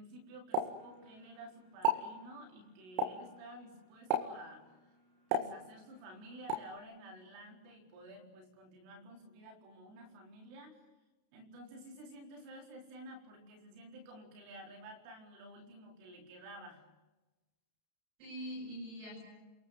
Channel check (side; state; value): left; late; 32 ms